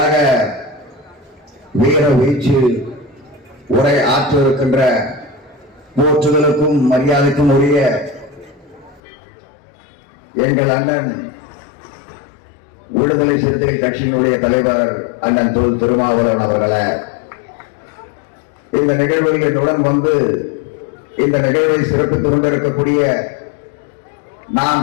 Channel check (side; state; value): right; drops out; at 9.0 s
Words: வீர வீச்சு உரை ஆற்றிருக்கின்ற போற்றுதலுக்கும் மரியாதைக்கும் உரிய எங்கள் அண்ணன் விடுதலை சிறுத்தைகள் கட்சியினுடைய தலைவர் அண்ணன் திருமாவளவன் அவர்களை, இந்த நிகழ்வில் என்னுடன் வந்து இந்த நிகழ்வை சிறப்பித்துக் கொண்டிருக்கக்கூடிய நாம்